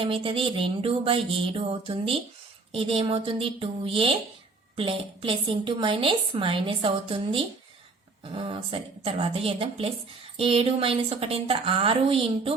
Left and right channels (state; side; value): quieter; left; 3.8 dB